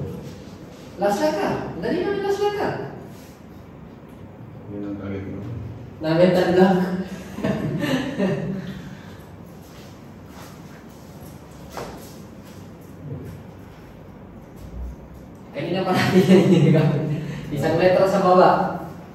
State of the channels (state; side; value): identical; both; correlation 1.00